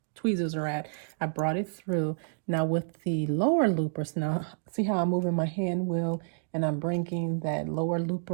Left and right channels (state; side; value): silent; left; digital silence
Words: tweezers are at, I brought it through. Now with the lower loopers, now see how I'm moving my hand wheel and I'm bringing that lower